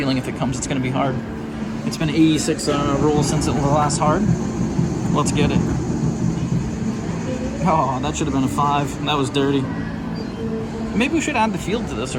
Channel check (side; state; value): both; identical; correlation 1.00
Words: if it comes, it's going to be hard. It's been 86 rolls since it was last hard. Let's get it. Oh, that should have been a 5. That was dirty. Maybe we should add the field to this